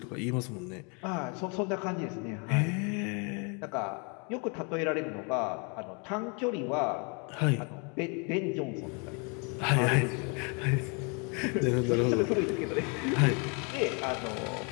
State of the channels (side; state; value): right; quieter; 34.6 dB